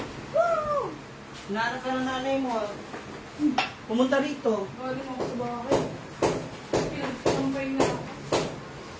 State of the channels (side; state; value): both; identical; correlation 1.00